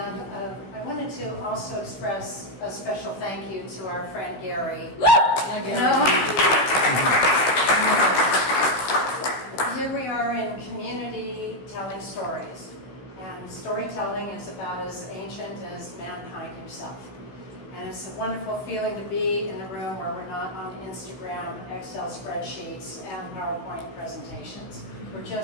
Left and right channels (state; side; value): late; right; 16 ms